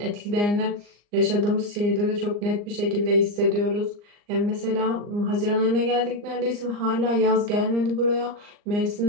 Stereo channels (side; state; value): left; late; 39 ms